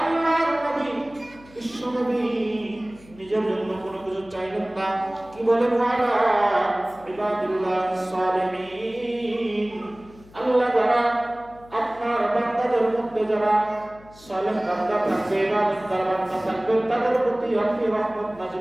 নবী, বিশ্ব নবী নিজের জন্য কোনো কিছু চাইলেন না। কি বলেন? ওয়ালা ইবাদিল্লাহ সালিহিন, আল্লাহ যারা আপনার বান্দাদের মধ্যে যারা সালেহ বান্দা থাকবে, ইবাদতদার বান্দা থাকবে, তাদের প্রতি আপনি রহমত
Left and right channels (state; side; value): noise; left; hum, 24 dB below the sound